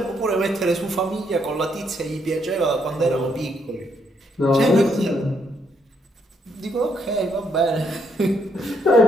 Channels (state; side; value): normal; both; correlation 0.74